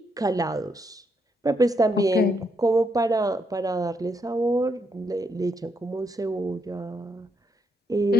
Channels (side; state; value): both; normal; correlation 0.77